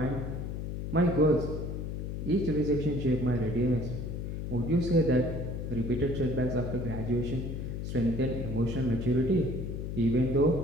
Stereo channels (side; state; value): left; noise; hum, 5 dB below the sound